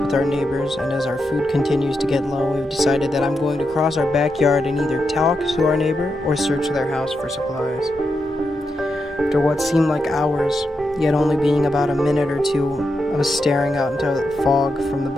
with our neighbors, and as our food continues to get low, we've decided that I'm going to cross our backyard and either talk to our neighbor or search their house for supplies. After what seemed like hours, yet only being about a minute or two, I was staring out into the fog from the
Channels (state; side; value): normal; both; correlation 0.86